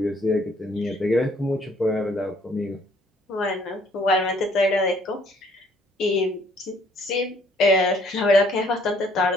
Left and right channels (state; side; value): normal; both; correlation 0.62